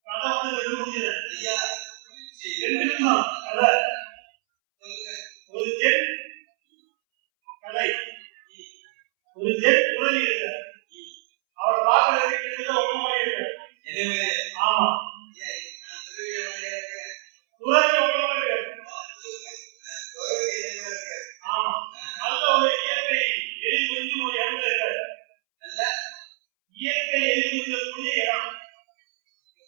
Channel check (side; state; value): left; silent; 61 dB below the other